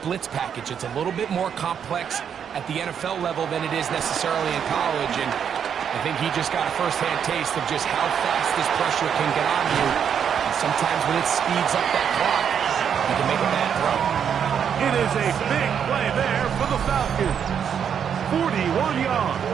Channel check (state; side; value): quieter; left; 8.0 dB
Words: package. It's a little bit more complex at the NFL level than it is necessarily in college, and I think he just got a first-hand taste of just how fast this pressure can get on you. And sometimes when it speeds up that clock, you can make a bad throw. It is a big play there for the Falcons. 41 yards.